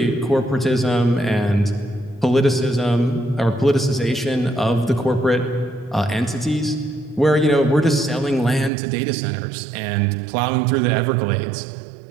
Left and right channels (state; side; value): drops out; left; at 8.7 s